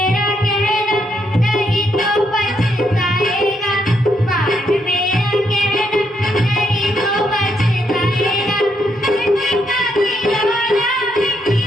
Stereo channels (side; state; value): both; normal; correlation 0.77